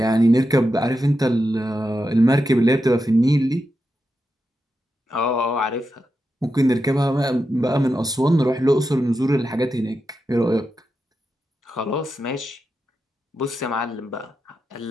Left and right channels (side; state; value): both; normal; correlation 0.88